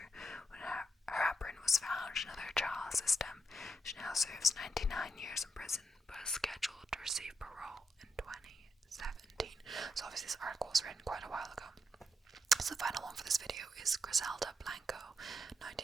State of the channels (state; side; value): normal; both; correlation 0.82